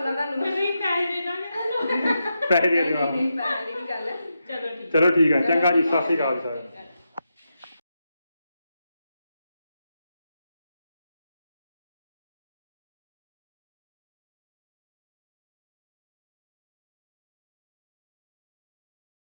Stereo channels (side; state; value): both; inverted; correlation -0.86